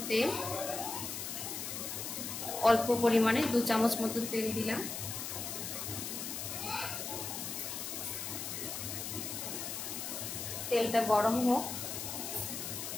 তেল। অল্প পরিমাণে 2 চামচ মতো তেল দিলাম। তেলটা গরম হোক।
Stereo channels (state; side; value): noise; left; hiss, 5 dB below the sound